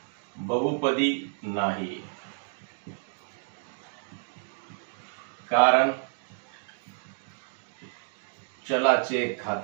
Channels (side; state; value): left; silent; digital silence